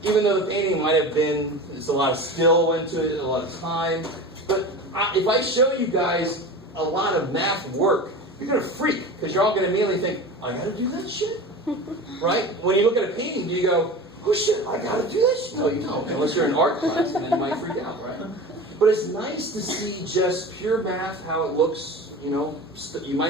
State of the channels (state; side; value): normal; both; correlation 0.32